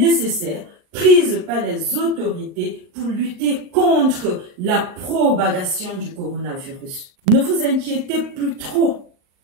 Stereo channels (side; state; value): left; late; 39 ms